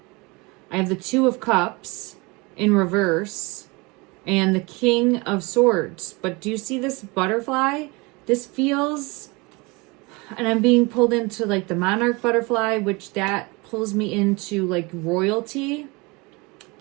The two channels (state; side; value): quieter; left; 26.2 dB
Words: I have the Two of Cups in reverse and the King of Swords. But do you see this butterfly? This feels, and I'm being pulled into like the monarch butterfly, which that pulls me into like royalty.